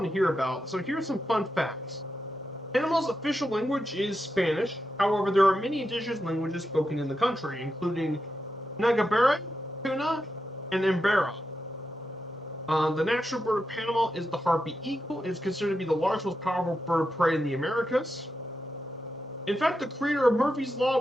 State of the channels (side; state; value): both; normal; correlation 0.87